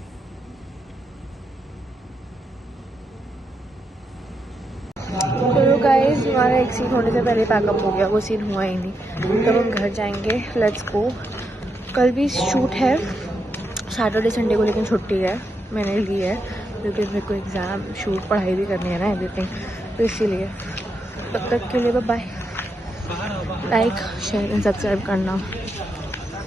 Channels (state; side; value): normal; both; correlation 0.82